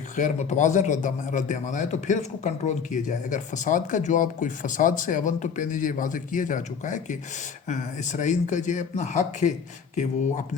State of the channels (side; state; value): right; quieter; 6.5 dB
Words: غیر متوازن رد عمل آئے تو پھر اس کو کنٹرول کیا جائے۔ اگر فساد کا جواب کوئی فساد سے اول تو پہلے یہ واضح کیا جا چکا ہے کہ اسرائیل کا یہ اپنا حق ہے کہ وہ